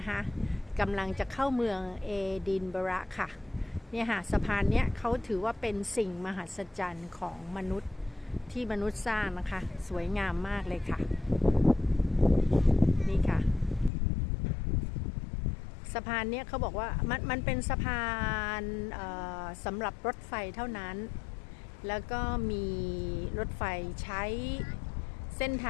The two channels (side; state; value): right; drops out; at 13.9 s